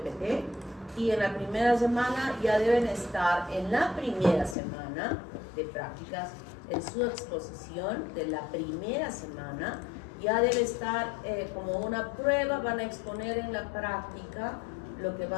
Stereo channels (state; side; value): drops out; right; at 4.5 s